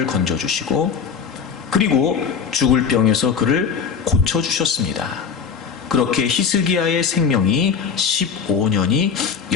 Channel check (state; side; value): quieter; right; 6.5 dB